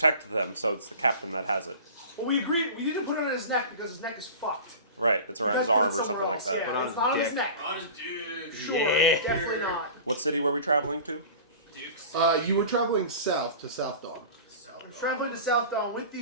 them, so it's the captain that has it. Well, we agreed. We didn't put it on his neck because his neck is fucked. Right, it's around We his gotta put arm it or something somewhere like else. that. Yeah, Put on it's not on his his neck. On his dick. Sure, Yeah. definitely not. What city were we traveling to? Dukes. You were traveling south to Southdawn. I'm traveling to Southdawn with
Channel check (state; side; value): inverted; both; correlation -0.38